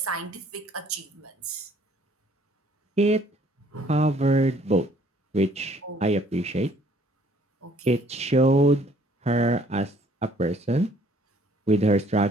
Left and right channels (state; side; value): normal; both; correlation 0.60